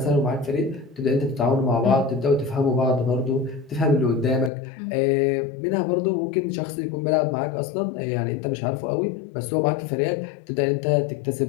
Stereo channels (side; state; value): right; drops out; at 4.5 s